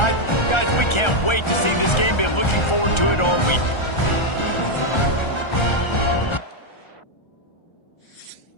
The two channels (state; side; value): late; right; 1.3 ms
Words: Guys, we can't wait to see this game. Been looking forward to it all week.